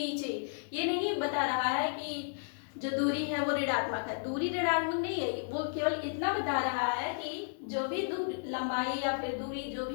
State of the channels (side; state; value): right; silent; 56 dB below the other